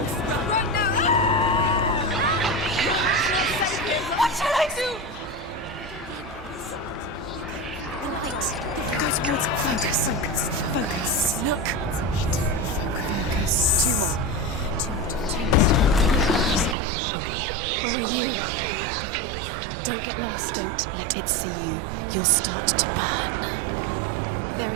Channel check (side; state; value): left; drops out; at 16.8 s